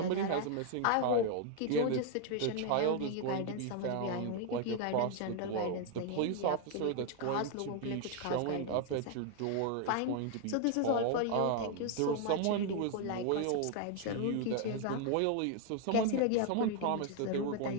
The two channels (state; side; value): different; both; correlation 0.01